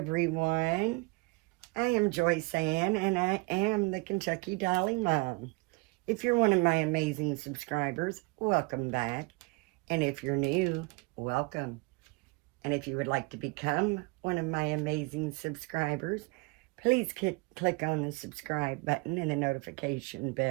I am Joyce Ann, and I am the Kentucky Dolly Mom. If you're one of my amazing subscribers, welcome back. And if you're new, welcome. And if you would like to become one of my amazing subscribers, please click on the subscribe button and the notification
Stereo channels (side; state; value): left; quieter; 28.1 dB